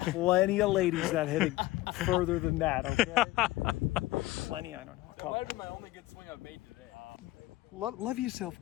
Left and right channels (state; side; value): quieter; right; 17.8 dB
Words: of ladies that hit it further than that, okay? Plenty, I don't know. That might have been my only good swing I've made today. Love yourself,